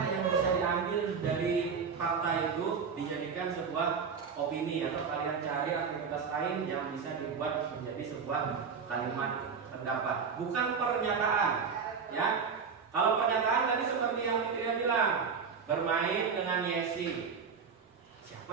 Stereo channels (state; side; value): quieter; left; 5.9 dB